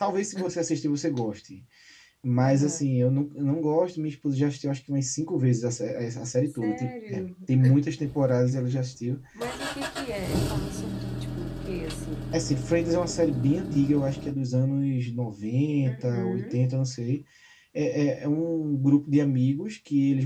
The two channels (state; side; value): identical; both; correlation 1.00